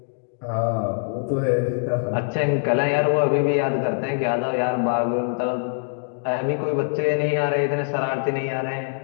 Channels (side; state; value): right; silent; digital silence